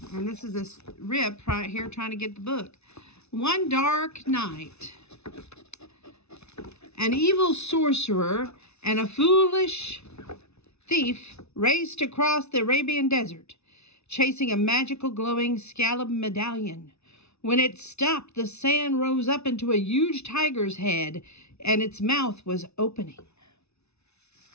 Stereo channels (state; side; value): late; right; 0.80 ms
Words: And this is this rip right here trying to get the book. One dark night, an evil sorcerer and a foolish thief raced across the Arabian desert, chasing a magical glowing scallop medallion. When it stopped, the sand rose up into a huge tiger's head, and its mouth was opening.